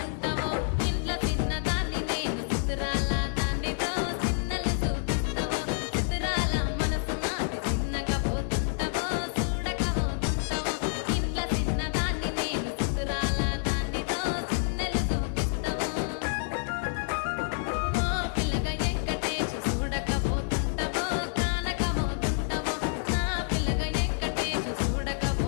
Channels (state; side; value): silent; right; 59 dB below the other